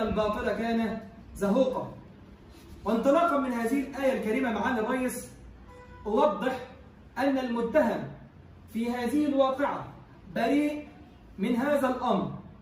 كان زهوقا. وانطلاقا من هذه الآية الكريمة معالي الرئيس، أوضح أن المتهم في هذه الواقعة بريء من هذا الأمر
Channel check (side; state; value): both; identical; correlation 1.00